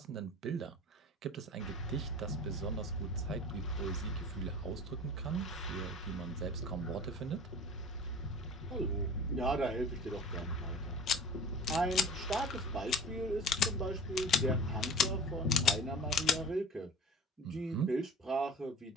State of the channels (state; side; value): normal; both; correlation 0.40